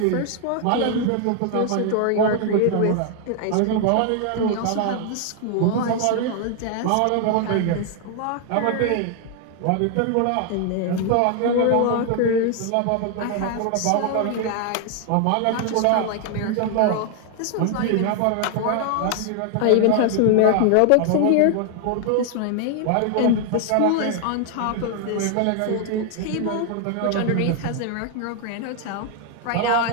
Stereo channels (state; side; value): different; both; correlation 0.00